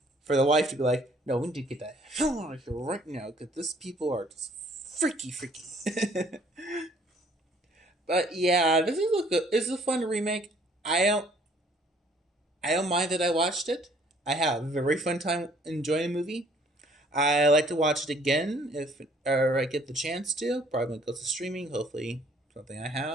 for the wife to be like, no, we need to get that hell out of here right now because these people are just freaky, freaky. But yeah, this is a good. This is a fun remake. I don't. I don't mind that I watched it. I have a very fun time enjoying the movie. I like to watch it again if or I get the chance to. Probably when it goes to streaming. Hopefully, something I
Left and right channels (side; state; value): both; normal; correlation 0.60